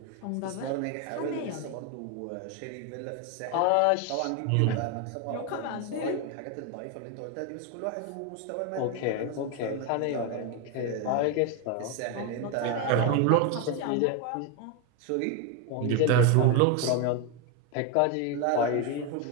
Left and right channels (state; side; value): different; both; correlation 0.02